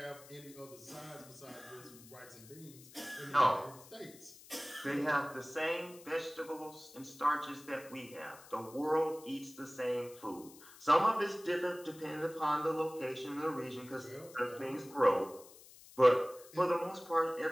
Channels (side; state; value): left; noise; hiss, 20 dB below the sound